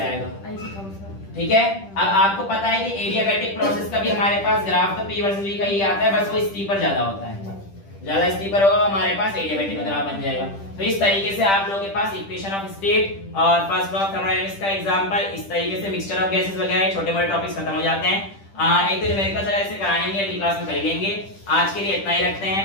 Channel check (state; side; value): late; right; 10 ms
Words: ठीक है। अब आपको पता है कि एडियाबैटिक प्रोसेस का भी हमारे पास ग्राफ तो P वर्सेस V का ही आता है, बस वो स्टीपर ज्यादा होता है, ज्यादा स्टीपर होगा हमारे पास एडियाबैटिक का ग्राफ बन जाएगा। तो इस तरीके से आप लोगों के पास इक्वेशन ऑफ स्टेट और फर्स्ट लॉ ऑफ थर्मोडायनामिक्स का एग्जांपल, इस तरीके से मिक्सचर ऑफ गैसेस वगैरह छोटे मोटे टॉपिक्स खत्म हो जाते हैं। एक तो न्यूमेरिकल चला इसे कराएंगे, अगली क्लास में कर लेंगे। आज के लिए इतना ही रखते हैं।